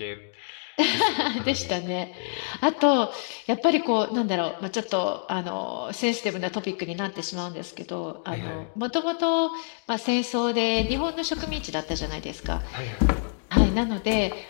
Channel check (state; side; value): silent; right; digital silence